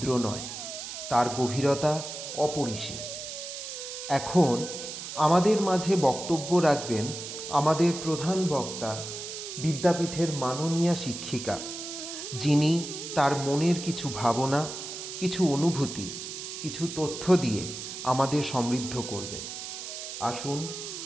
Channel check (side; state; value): right; noise; hiss, 8 dB below the sound